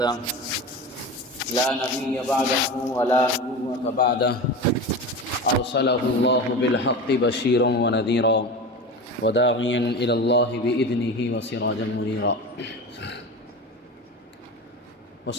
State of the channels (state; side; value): normal; both; correlation 0.28